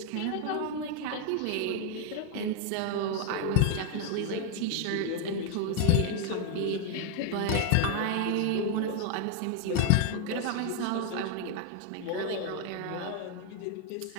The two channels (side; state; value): both; different; correlation 0.00